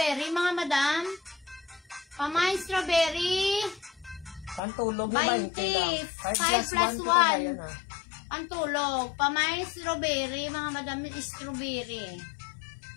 mga madam. Pamain strawberry. Pantulog mo 20 lang. 5 plus 1 1. Pantulog. Pamain strawberry. Mga madam, strawberry.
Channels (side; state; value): right; drops out; at 4.6 s